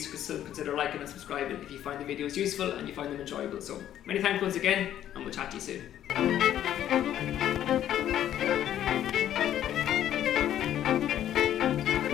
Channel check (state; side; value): quieter; right; 11.3 dB